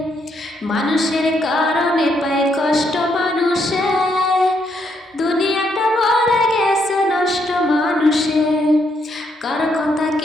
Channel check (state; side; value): normal; both; correlation 0.75